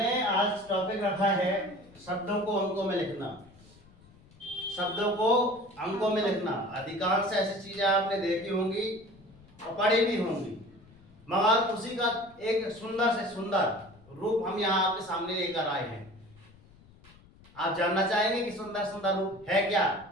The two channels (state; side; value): noise; left; rumble, 25 dB below the sound